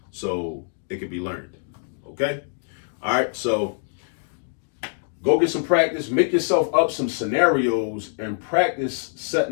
so it can be learned. Okay. All right. So go get some practice, make yourself up some scenarios and practice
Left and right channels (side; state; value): right; silent; digital silence